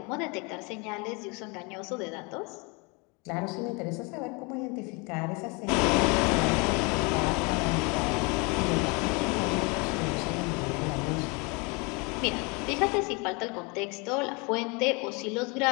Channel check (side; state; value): right; quieter; 29.9 dB